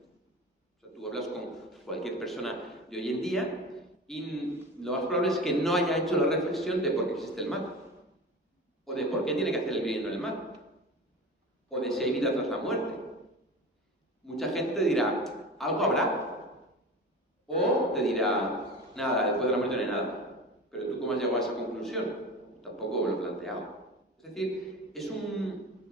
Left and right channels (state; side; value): normal; both; correlation 0.32